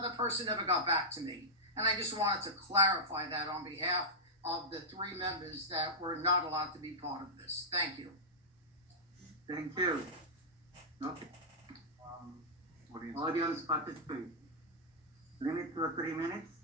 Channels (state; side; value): normal; both; correlation -0.10